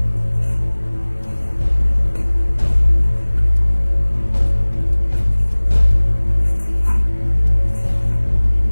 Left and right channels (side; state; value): both; inverted; correlation -1.00